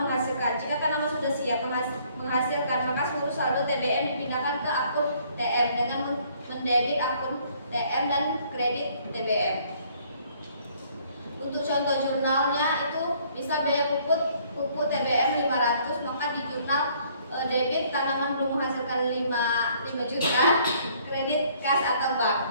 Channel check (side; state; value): both; inverted; correlation -0.62